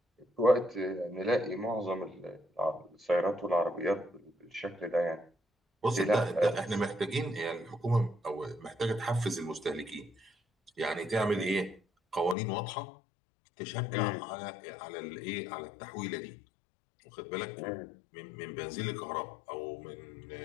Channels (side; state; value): right; drops out; at 12.4 s